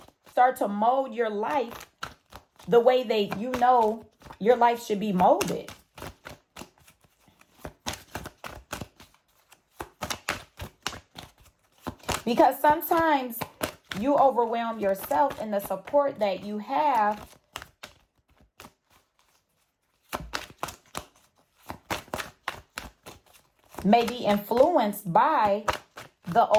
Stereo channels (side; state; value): both; identical; correlation 1.00